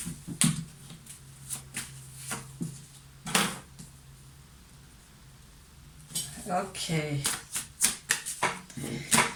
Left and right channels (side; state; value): both; identical; correlation 1.00